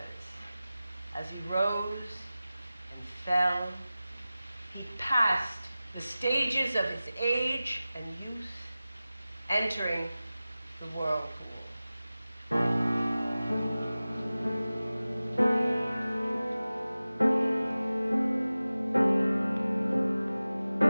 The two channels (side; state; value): both; inverted; correlation -0.96